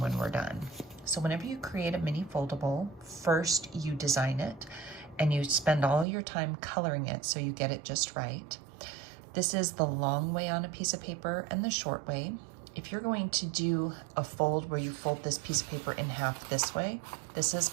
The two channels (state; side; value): drops out; left; at 6.1 s